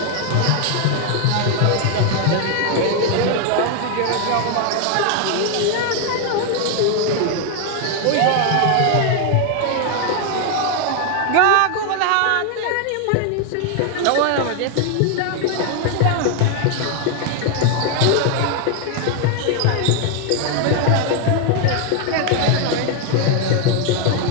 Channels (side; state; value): both; different; correlation 0.01